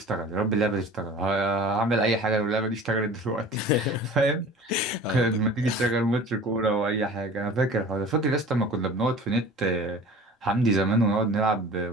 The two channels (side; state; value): both; normal; correlation 0.42